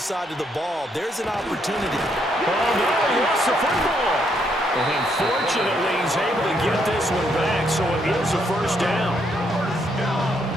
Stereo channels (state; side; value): normal; both; correlation 0.74